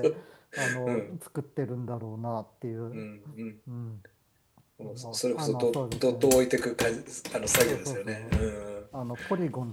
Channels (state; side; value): identical; both; correlation 1.00